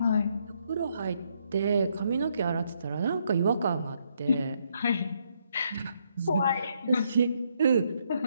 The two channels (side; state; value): both; inverted; correlation -0.74